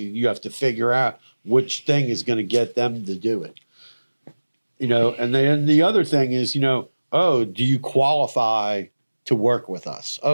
You have to figure out which thing is going to get them to do it. And then the other thing is, do you qualify to work with us?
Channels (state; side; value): inverted; both; correlation -1.00